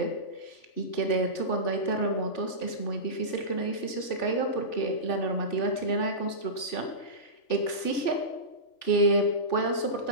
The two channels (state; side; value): late; right; 3.5 ms